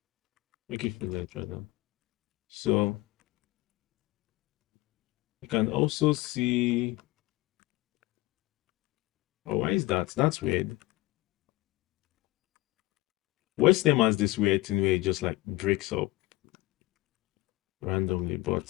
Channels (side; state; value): right; quieter; 19.1 dB